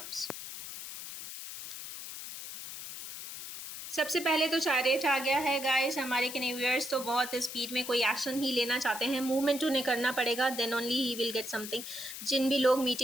सबसे पहले तो चैरियट आ गया है गाइस। हमारे व्यूअर्स तो बहुत स्पीड में कोई एक्शन ही लेना चाहते हैं, मूवमेंट उन्हें करना पड़ेगा, then only he will get something. जिन भी लोग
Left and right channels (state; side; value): noise; left; hiss, 10 dB below the sound